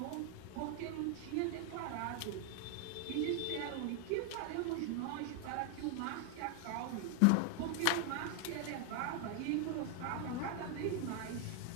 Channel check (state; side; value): different; both; correlation 0.01